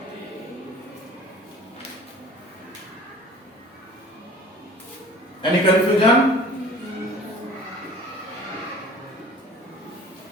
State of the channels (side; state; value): both; normal; correlation 0.46